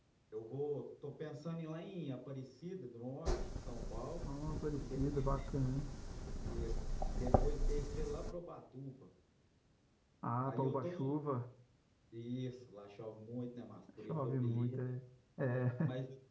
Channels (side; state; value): both; identical; correlation 1.00